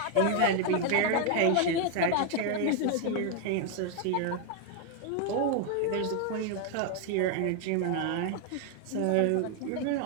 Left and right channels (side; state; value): both; different; correlation 0.01